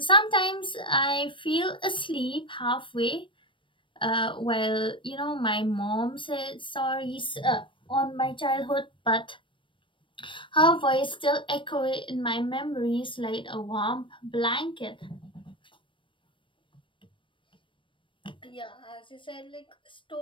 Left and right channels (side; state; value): right; late; 0.25 ms